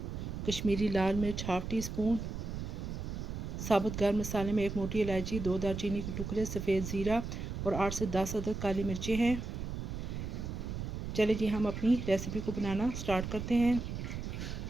कश्मीरी लाल मिर्च हाफ़ टी स्पून, साबुत गर्म मसाले में 1 मोटी इलायची, 2 दालचीनी के टुकड़े, सफ़ेद ज़ीरा और 8 से 10 अदद काली मिर्चें हैं। चलिए जी हम अपनी रेसिपी को बनाना स्टार्ट करते हैं।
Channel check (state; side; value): noise; right; rumble, 5 dB below the sound